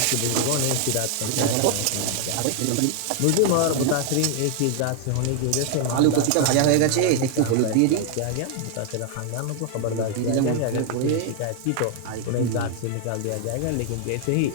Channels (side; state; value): both; different; correlation 0.00